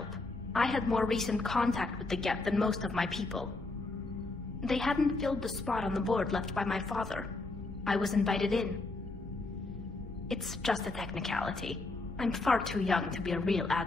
I had more recent contact with the Geth than most of my people. They hadn't filled the spot on the board left by my father. I was invited in. It's just a technicality. I'm far too young to be a real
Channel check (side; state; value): right; quieter; 3.2 dB